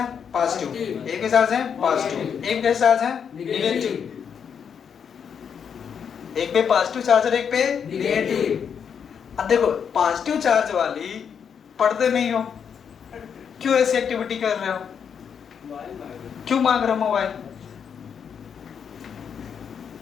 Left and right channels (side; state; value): right; quieter; 7.3 dB